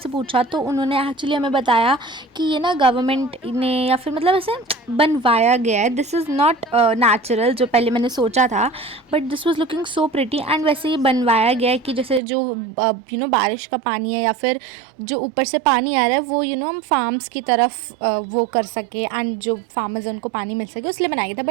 पूछा तो उन्होंने एक्चुअली हमें बताया कि ये ना गवर्नमेंट ने या फिर मतलब ऐसे बनवाया गया है, दिस इज़ नॉट नेचुरल जो पहले मैंने सोचा था, but this was looking so pretty. And वैसे ये बनवाया गया है कि जैसे जो बारिश का पानी है या फिर जो ऊपर से पानी आ रहा है वो हम फार्म्स की तरफ वो कर सके एंड जो फार्मर्स हैं उनको पानी मिल सके, उसलिए बनाया गया था।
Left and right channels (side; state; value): left; drops out; at 12.2 s